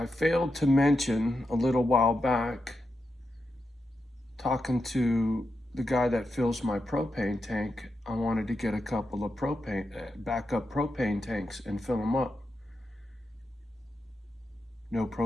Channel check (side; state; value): both; normal; correlation 0.87